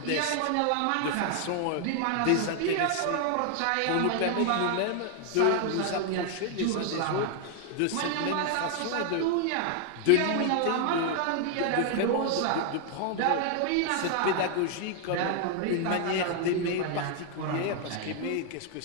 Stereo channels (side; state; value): both; different; correlation 0.00